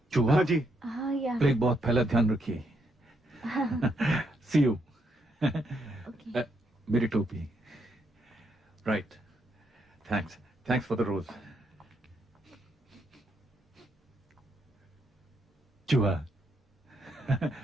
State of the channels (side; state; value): both; normal; correlation 0.77